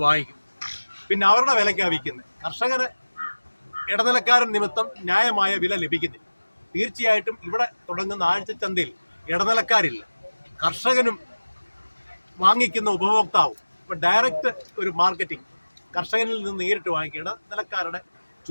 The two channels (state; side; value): inverted; both; correlation -1.00